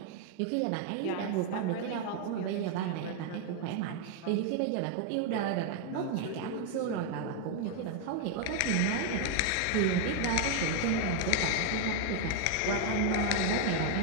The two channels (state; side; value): different; both; correlation 0.01